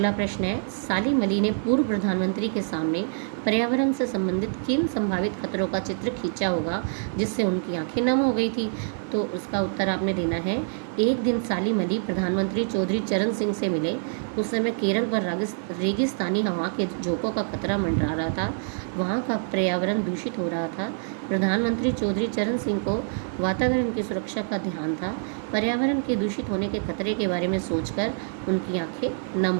प्रश्न है, सालिम अली ने पूर्व प्रधानमंत्री के सामने पर्यावरण से संबंधित किन संभावित खतरों का चित्र खींचा होगा जिससे उनकी आंखें नम हो गई थी? तो उसका उत्तर आपने देना है। एक दिन सालिम अली प्रधानमंत्री चौधरी चरण सिंह से मिले। उस समय केरल पर रेगिस्तानी हवा के झोंकों का खतरा मंडरा रहा था। वहाँ का पर्यावरण दूषित हो रहा था। प्रधानमंत्री चौधरी चरण सिंह को वातावरण की सुरक्षा का ध्यान था। पर्यावरण के दूषित होने के खतरे के बारे में सोचकर उनकी आंखें नम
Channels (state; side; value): silent; left; digital silence